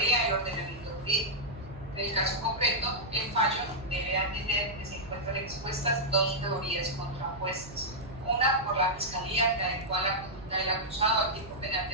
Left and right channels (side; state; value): right; noise; hum, 18 dB below the sound